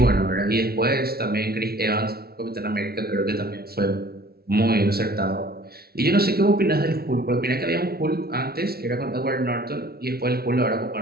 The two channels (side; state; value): left; late; 0.45 ms